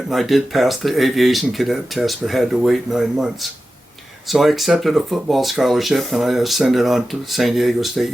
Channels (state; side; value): normal; both; correlation 0.93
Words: and I did pass the aviation cadet test, but had to wait 9 months. So I accepted a football scholarship and I ascended on to San Diego State